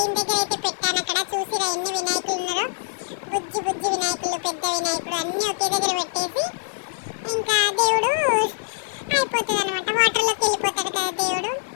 దగ్గర అయితే పెట్టాను. అక్కడ చూసిరా ఎన్ని వినాయకులు ఉన్నారో, బుజ్జి బుజ్జి వినాయకులు, పెద్ద వినాయకుడు అన్నీ ఒకే దగ్గర పెట్టేసి ఇంకా దేవుడు అయిపోతుంది అనమాట. వాటర్లోకి వెళ్ళిపోతాడు కదా దేవుడు.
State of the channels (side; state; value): right; silent; 61 dB below the other